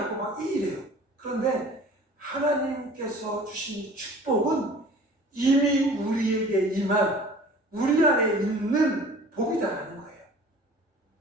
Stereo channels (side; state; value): both; normal; correlation 0.46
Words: 막 이래요. 그런데 하나님께서 주신 축복은 이미 우리에게 임한, 우리 안에 있는 복이다라는 거예요.